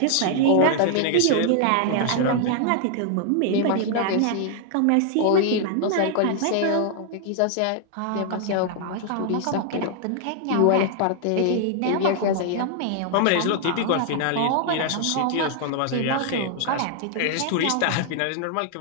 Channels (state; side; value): different; both; correlation 0.00